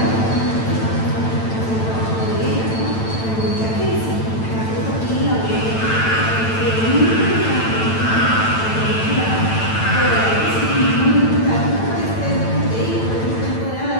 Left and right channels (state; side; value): late; right; 9.0 ms